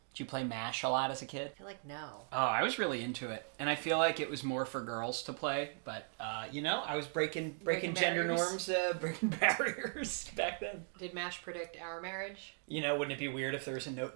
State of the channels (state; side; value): silent; left; 52 dB below the other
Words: Did you play MASH a lot as a kid? I feel like no. Oh, I was really into it. And I feel like it was more for girls to play. But, I was breaking gender norms, breaking barriers back then. Did MASH predict our marriage? Wouldn't it be weird if there was a